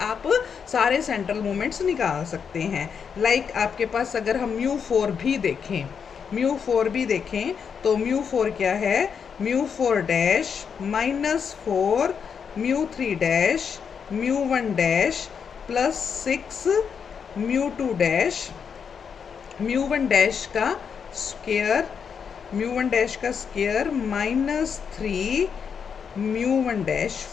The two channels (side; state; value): right; quieter; 6.7 dB